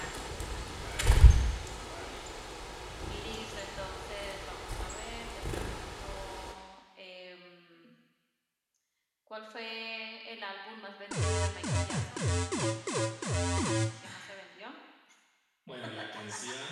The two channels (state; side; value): identical; both; correlation 1.00